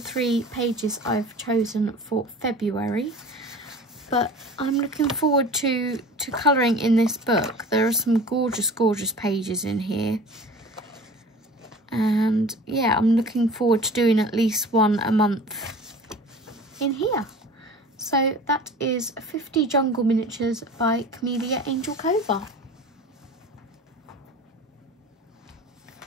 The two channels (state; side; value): normal; both; correlation 0.41